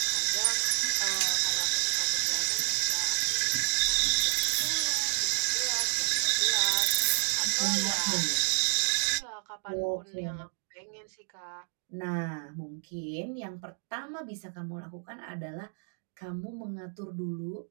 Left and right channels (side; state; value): left; silent; digital silence